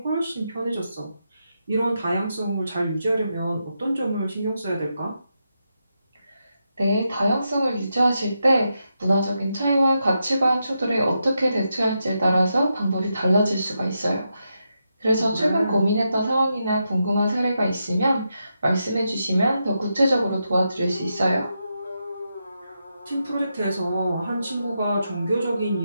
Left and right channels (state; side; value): inverted; both; correlation -0.85